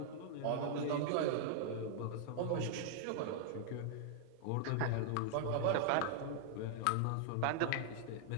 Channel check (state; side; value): different; both; correlation -0.01